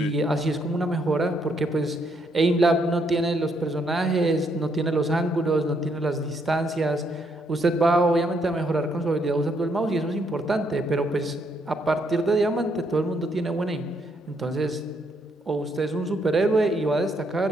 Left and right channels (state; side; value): normal; both; correlation 0.74